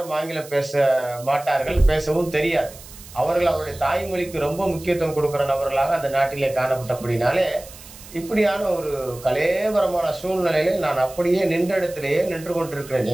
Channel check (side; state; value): right; noise; hiss, 18 dB below the sound